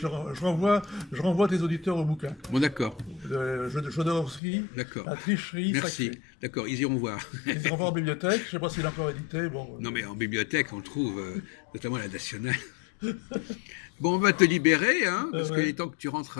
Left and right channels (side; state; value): right; drops out; at 4.4 s